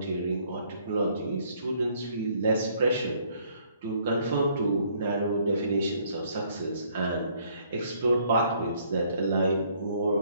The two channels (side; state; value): both; inverted; correlation -0.64